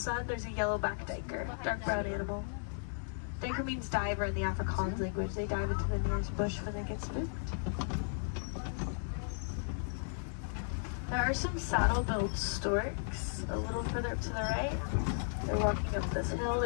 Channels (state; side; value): silent; right; 54 dB below the other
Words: there's a yellow-backed duiker, dark brown animal. Duiker means diver in the Afrikaans language. They dive into the nearest bush when they get spooked. There are some saddle-billed storks a little further up to the right. They're walking up this hill.